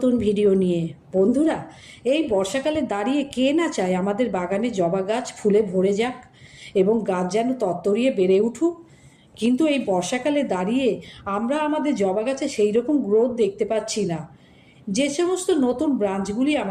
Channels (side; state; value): both; identical; correlation 1.00